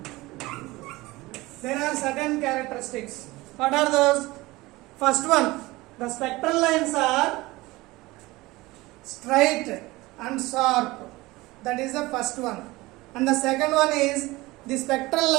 There are certain characteristics. What are those? First one, the spectral lines are straight and sharp. That is the first one. And the second one is the spectral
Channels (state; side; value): quieter; left; 20.5 dB